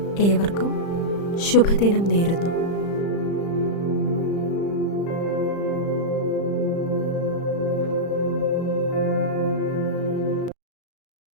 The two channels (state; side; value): late; right; 35 ms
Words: ഏവർക്കും ശുഭദിനം നേരുന്നു.